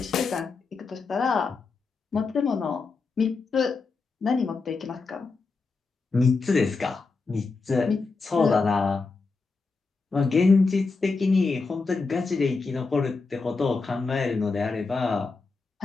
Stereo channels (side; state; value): right; quieter; 4.2 dB